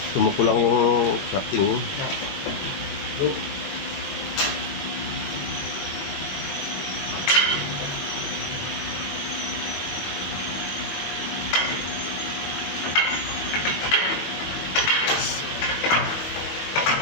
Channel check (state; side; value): late; right; 22 ms